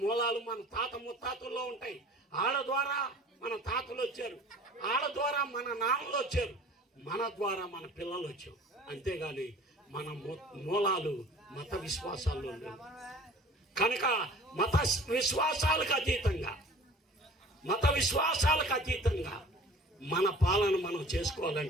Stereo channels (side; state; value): both; normal; correlation 0.46